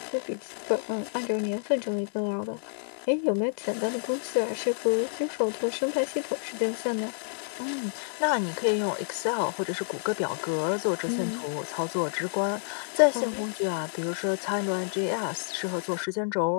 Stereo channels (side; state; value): right; silent; digital silence